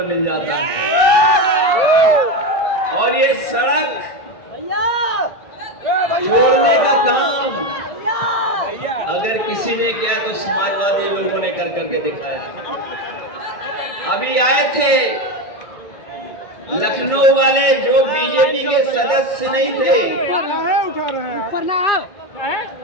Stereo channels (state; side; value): late; right; 1.6 ms